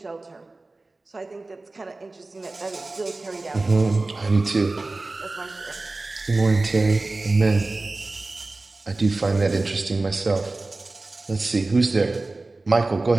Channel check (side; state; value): left; quieter; 3.2 dB